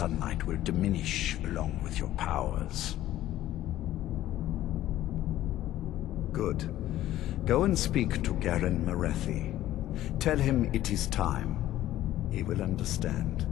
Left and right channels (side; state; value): right; quieter; 13.9 dB